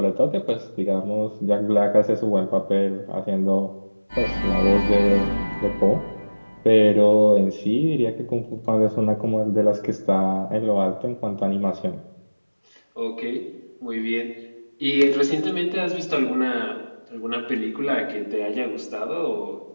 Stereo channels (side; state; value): both; inverted; correlation -1.00